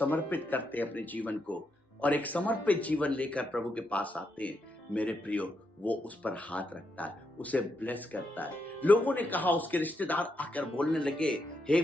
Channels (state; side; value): normal; both; correlation 0.81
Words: करते हैं अपने जीवन को, और एक समर्पित जीवन लेकर प्रभु के पास आते हैं, मेरे प्रियो, वो उस पर हाथ रखता है, उसे ब्लेस करता है। लोगों ने कहा, उसके रिश्तेदार आकर बोलने लगे, हे